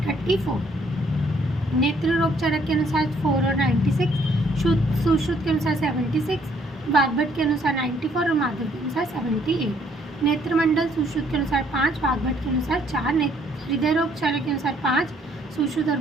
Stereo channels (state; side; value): normal; both; correlation 0.66